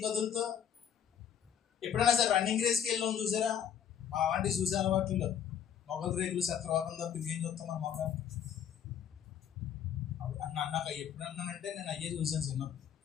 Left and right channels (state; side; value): quieter; right; 8.9 dB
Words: కదులుతో. ఎప్పుడైనా సరే రన్నింగ్ రేస్కి వెళ్ళాం చూసారా? మా అలాంటివి చూసే అలవాట్లు. మొగలు రేకులు శత్రువాకం తప్ప ఇంకేం చూస్తాం మన మొగలు. నాకు ఎప్పుడు అన్నానంటే నేను అయ్యే చూసాను చిన్నప్పుడు.